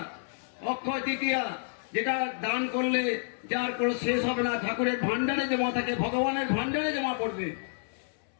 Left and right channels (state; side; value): silent; right; 58 dB below the other